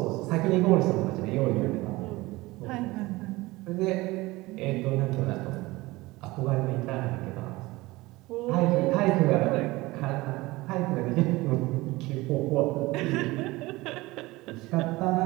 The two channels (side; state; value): left; quieter; 20.5 dB